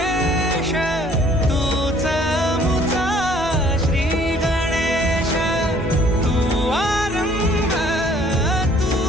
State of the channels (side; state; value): both; normal; correlation 0.58